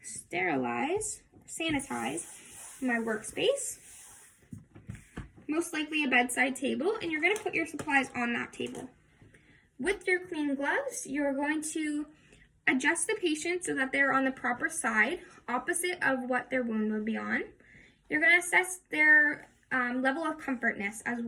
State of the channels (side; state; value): both; identical; correlation 1.00